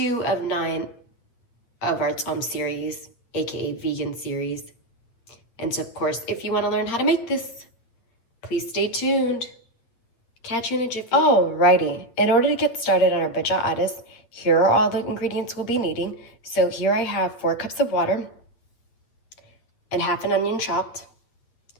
of 9 of our Tsom series, aka vegan series. And so, of course, if you want to learn how to make this, please stay tuned. Catch you in a jiffy. Alrighty, in order to get started on our vegeta ades, here are all the ingredients we'll be needing. So here I have 4 cups of water and half an onion chopped,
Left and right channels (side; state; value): right; late; 9.1 ms